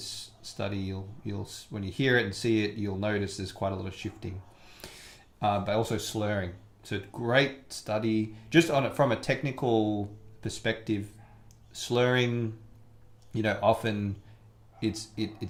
study, you'll when you hear it and see it, you'll notice there's quite a lot of shifting. But also slurring. So great study. Just on it from a technical perspective, slurring, often it's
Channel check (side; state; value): both; identical; correlation 1.00